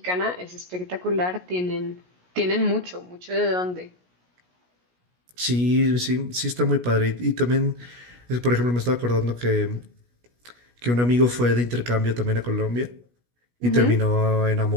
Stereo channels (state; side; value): late; left; 17 ms